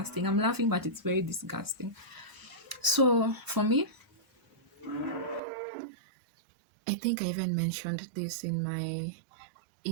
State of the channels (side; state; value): left; drops out; at 5.4 s